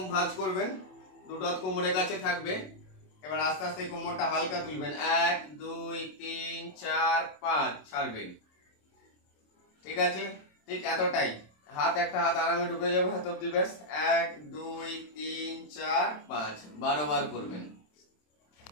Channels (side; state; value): right; late; 27 ms